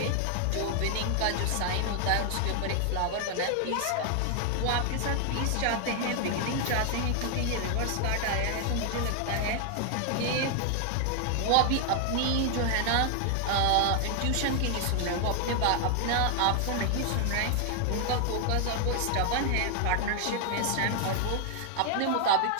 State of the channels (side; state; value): both; different; correlation 0.00